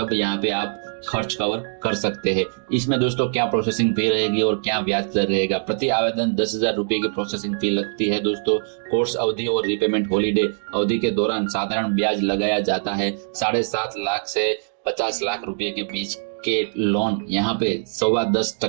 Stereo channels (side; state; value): left; silent; digital silence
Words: यहाँ पे आप खर्च कवर कर सकते हैं। इसमें दोस्तों क्या प्रोसेसिंग फी रहेगी और क्या ब्याज दर रहेगा? प्रति आवेदन 10,000 रुपए की प्रोसेसिंग फी लगती है दोस्तों। कोर्स अवधि और रिपेमेंट हॉलीडे अवधि के दौरान साधारण ब्याज लगाया जाता है। 7.5 लाख से 50 लाख रुपए के बीच के लोन यहाँ पे